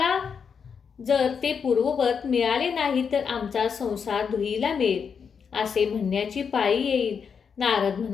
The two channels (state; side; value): quieter; right; 6.5 dB